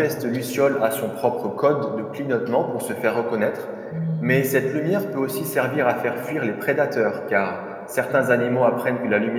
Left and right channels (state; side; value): identical; both; correlation 1.00